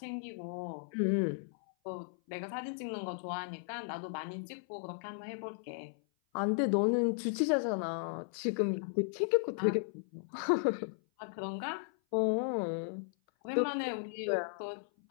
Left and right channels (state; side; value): silent; right; 54 dB below the other